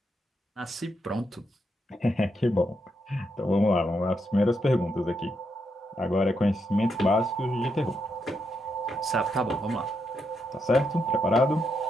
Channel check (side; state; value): both; normal; correlation 0.81